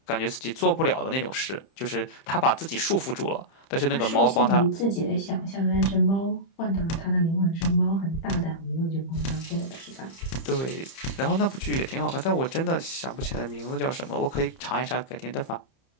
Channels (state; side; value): late; right; 30 ms